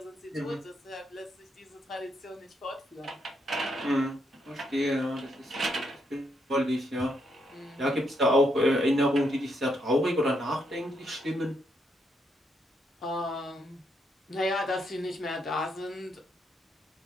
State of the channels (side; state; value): both; normal; correlation 0.77